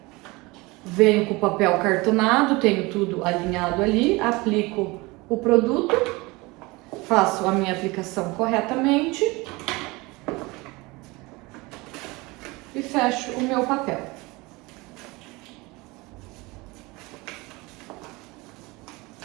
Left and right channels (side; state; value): left; quieter; 23.6 dB